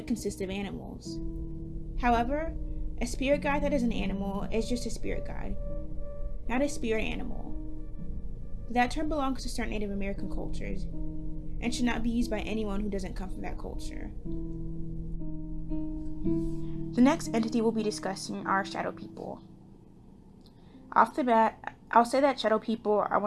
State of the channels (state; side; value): identical; both; correlation 1.00